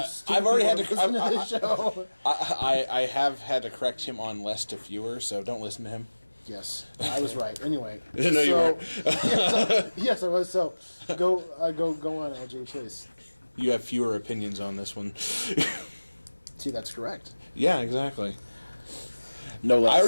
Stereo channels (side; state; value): both; inverted; correlation -1.00